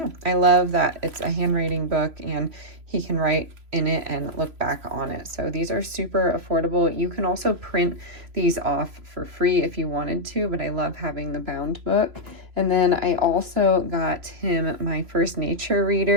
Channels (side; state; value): left; late; 3.0 ms